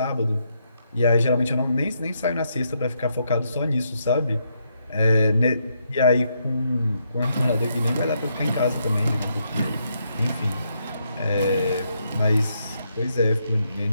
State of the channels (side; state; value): both; inverted; correlation -0.78